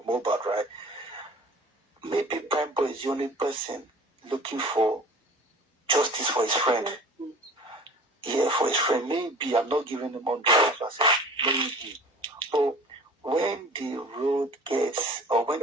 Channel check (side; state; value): both; normal; correlation 0.43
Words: Mohbad, right? Maybe Prime Boy is the only person looking for justice for his friend. Yeah, for his friend. Maybe I'm not giving him 100%. Maybe. But when the road gets, or when